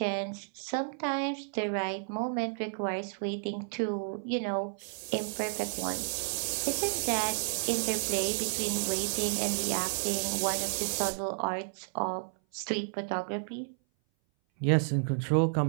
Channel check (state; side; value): silent; left; 57 dB below the other